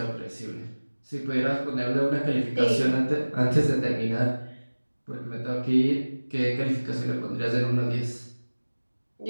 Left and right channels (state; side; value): inverted; both; correlation -1.00